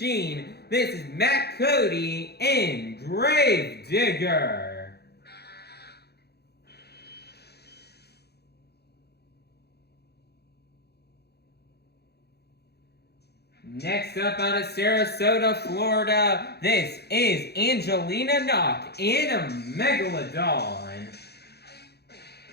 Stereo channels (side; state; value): right; late; 0.48 ms